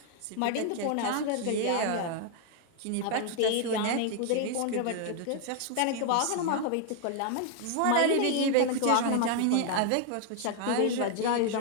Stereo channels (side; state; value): both; different; correlation 0.00